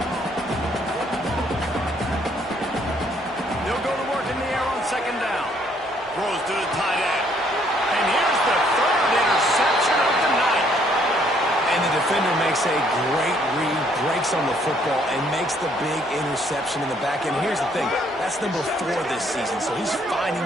They'll go to work in the air on 2nd down. Throws to the tight end. And here's the 3rd interception of the night. And the defender makes a great read, breaks on the football, and makes the big interception in the back end. Here's the thing. That's number 4 this season, so he's finding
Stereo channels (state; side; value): normal; both; correlation 0.66